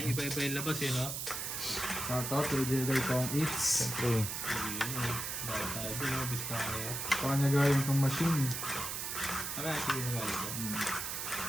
iba-iba yung labas eh, no? Shoutout to Jedi Kong Eats. Siyempre. Hindi, dahil tayo din, no? Biskaya. Kanya gayong itong machine. Kaya, sige na gano'n ito.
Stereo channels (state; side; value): noise; right; hiss, 4 dB below the sound